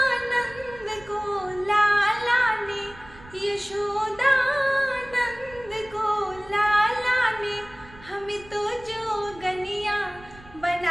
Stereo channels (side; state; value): right; noise; rumble, 21 dB below the sound